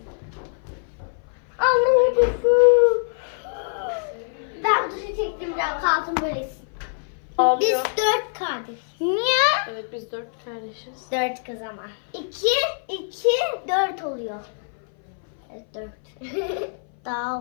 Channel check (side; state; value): right; silent; 58 dB below the other